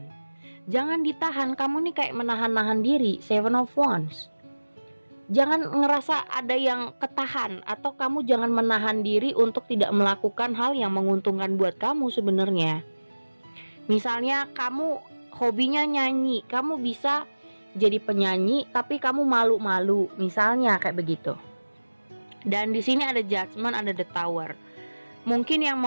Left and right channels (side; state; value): both; inverted; correlation -1.00